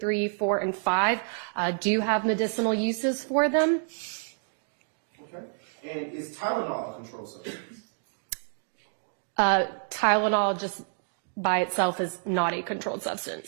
4, and 5, do have medicinal uses for them. Okay. And is Tylenol a controlled substance? Tylenol just by itself is not a controlled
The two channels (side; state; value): left; silent; digital silence